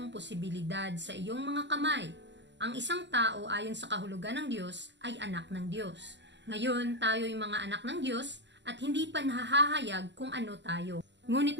posibilidad sa iyong mga kamay. Ang isang tao ayon sa kahulugan ng Diyos ay anak ng Diyos. Ngayon, tayo'y mga anak ng Diyos at hindi pa nahahayag kung ano tayo. Ngunit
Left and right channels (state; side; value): late; left; 0.52 ms